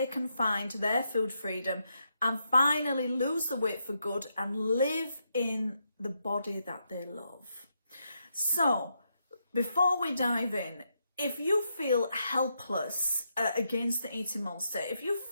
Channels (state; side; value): inverted; both; correlation -0.81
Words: can find their food freedom and finally lose the weight for good and live in the body that they love. So, before we dive in, if you feel helpless against the eating monster, if you